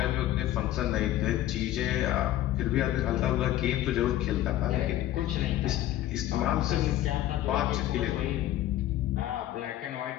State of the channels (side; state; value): right; quieter; 13.7 dB